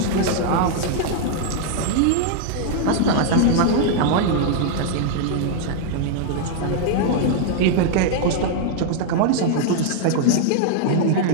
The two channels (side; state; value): both; different; correlation -0.01